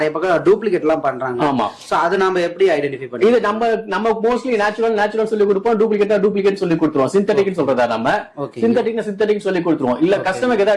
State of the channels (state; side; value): identical; both; correlation 1.00